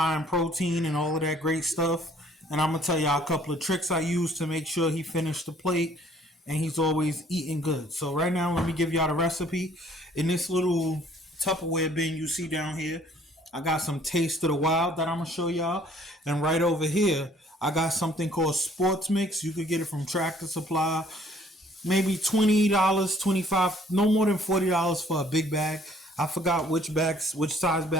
in protein and all of that great stuff. And I'm going to tell y'all a couple of tricks I use to make sure he finished the plate and he's always eating good. So right now, let me give y'all the recipe. In this little Tupperware bin you see down here, I got some Taste of the Wild that I'm going to show y'all. And right over here, I got something called Sports Mix. You could get it from Tractor Supply. Maybe $20, $25, no more than $40 for a big bag. I forgot which size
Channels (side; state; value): both; normal; correlation 0.59